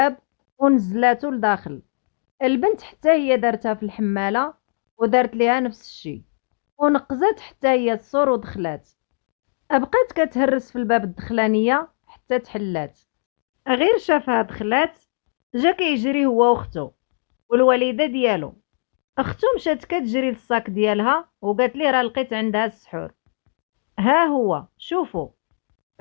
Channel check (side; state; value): right; silent; digital silence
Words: ونزلاتو لداخل. البنت حتى هي دارتها في الحمالة ودارت ليها نفس الشي، ونقزات حتى هي السور ودخلات. بقات كتهرس في الباب الدخلانية حتى تحلات. غير شافها دخلات جا كيجري هو وختو والوالدة ديالو. اختو مشات كتجري للصاك ديالها وقالت ليه راه لقيت عندها السحور. ها هو شوفوا.